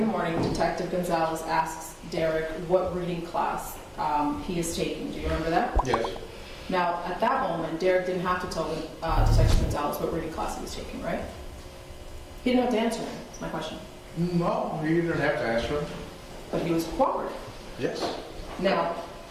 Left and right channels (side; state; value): both; identical; correlation 1.00